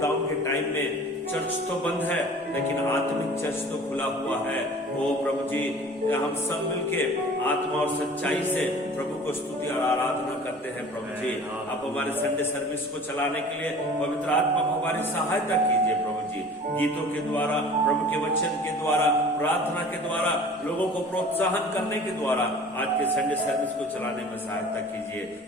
के टाइम में चर्च तो बंद है लेकिन आत्मिक चर्च तो खुला हुआ है। ओ प्रभु जी हम सब मिलके आत्मा और सच्चाई से प्रभु को स्तुति और आराधना करते हैं। प्रभु जी आप हमारे संडे सर्विस को चलाने के लिए पवित्र आत्मा को हमारी सहायता कीजिए। प्रभु जी गीतों के द्वारा, प्रभु के वचन के द्वारा, प्रार्थना के द्वारा, लोगों को प्रोत्साहन करने के द्वारा आज के संडे सर्विस को चलाने में सहायता कीजिए।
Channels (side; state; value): both; normal; correlation 0.44